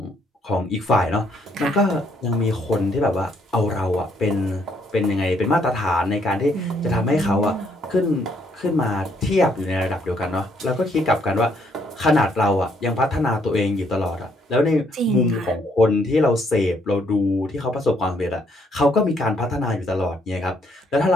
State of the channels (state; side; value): normal; both; correlation 0.70